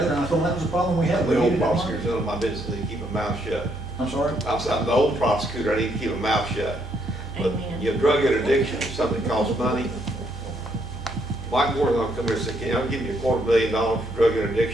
and I told them that was a problem we had. We The old needed that money. prosecutor's none of my business, I need to keep my mouth shut. I'm sorry? I'm the old prosecutor, I need to keep my mouth shut. But your drug interdiction is something that costs money. Mike Moore's gonna come here and say, "Can I give you $250,000 for drug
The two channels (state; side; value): noise; right; hum, 13 dB below the sound